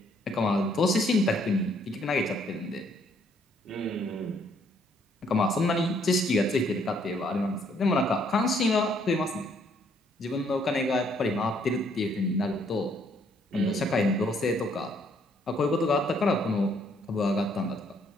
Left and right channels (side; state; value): both; normal; correlation 0.67